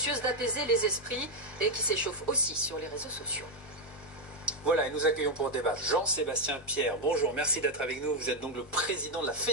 d'apaiser les esprits et qui s'échauffent aussi sur les réseaux sociaux. Voilà, et nous accueillons pour débattre Jean-Sébastien Pierre. Bonjour, merci d'être avec nous. Vous êtes donc le président de la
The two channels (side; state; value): both; normal; correlation 0.03